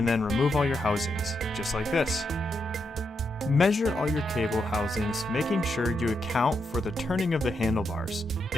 then remove all your housings, just like this. Measure all your cable housings, making sure you account for the turning of the handlebars.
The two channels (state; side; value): normal; both; correlation 0.82